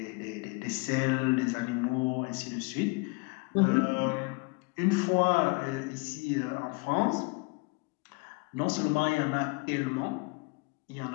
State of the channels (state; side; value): quieter; right; 28.7 dB